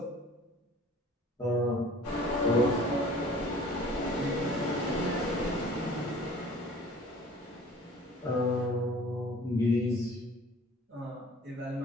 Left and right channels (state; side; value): normal; both; correlation 0.48